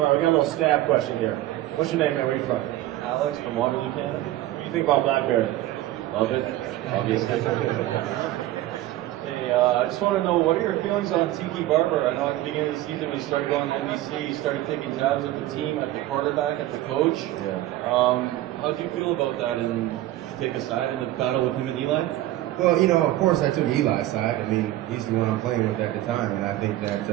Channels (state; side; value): quieter; left; 15.1 dB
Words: right, we got a little stab question here. What's your name, man? Where are you from? Alex from Waterloo, Canada. What do you think about Blackberry? Love it, obviously. Hey, I just want to know, what are your feelings on Tiki Barber? I know at the beginning of the season when he started going to NBC, he started taking tabs at the team, at the quarterback, at the coach. Yeah. How do you feel about that, and take a side in the battle with him and Eli? Well, of course I took Eli's side. I mean, he's the one I'm playing with at the time, and I think that